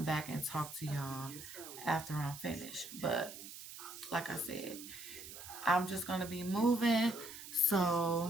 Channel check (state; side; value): noise; right; hiss, 12 dB below the sound